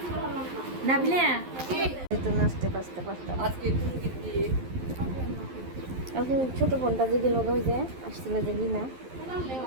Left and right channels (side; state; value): left; late; 11 ms